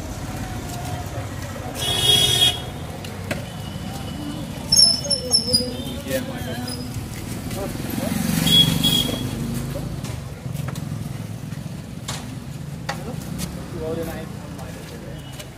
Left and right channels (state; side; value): identical; both; correlation 1.00